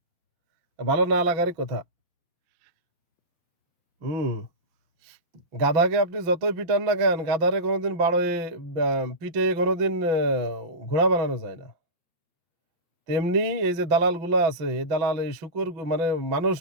ভালো না লাগারই কথা। হুম। গাধাকে আপনি যতই পিটান না কেন, গাধারে কোনোদিন পিটে কোনোদিন ঘোড়া বানানো যায় না। তেমনি এই যে দালালগুলা আছে, এই দালাল এই শূকর মানে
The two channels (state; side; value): late; left; 6.0 ms